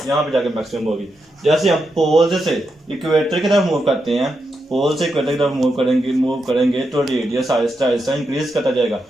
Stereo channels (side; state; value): both; normal; correlation 0.85